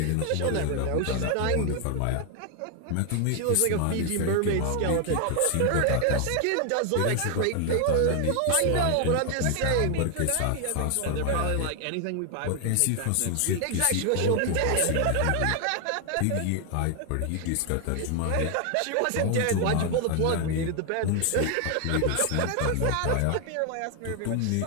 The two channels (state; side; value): different; both; correlation 0.00